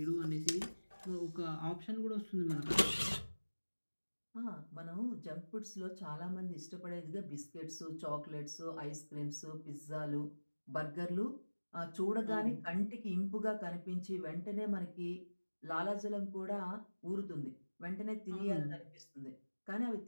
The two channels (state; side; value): inverted; both; correlation -1.00